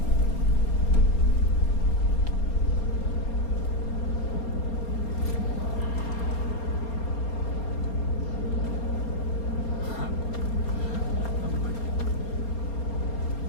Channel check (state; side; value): late; right; 4.3 ms